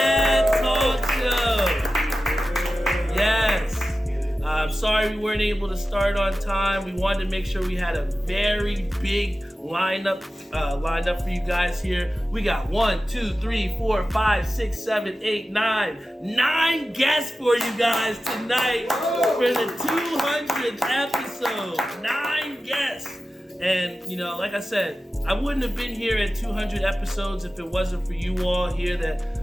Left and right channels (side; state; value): both; normal; correlation 0.94